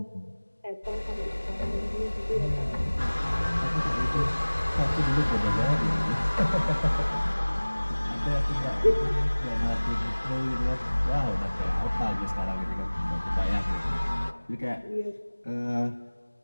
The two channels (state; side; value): inverted; both; correlation -1.00